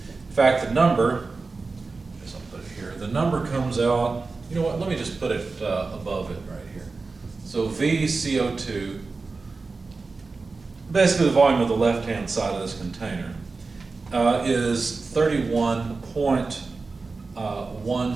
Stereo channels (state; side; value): quieter; left; 4.0 dB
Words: fact, the number, I guess I'll put it here, the number comes out, you know what, let me just put it above it right here. So VCO2, basically the volume of the left-hand side of this container, is